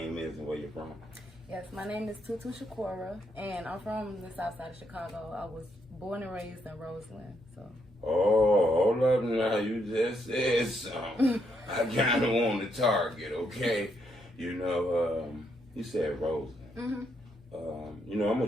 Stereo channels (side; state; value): both; normal; correlation 0.77